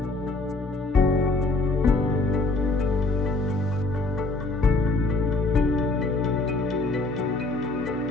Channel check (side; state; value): right; quieter; 3.2 dB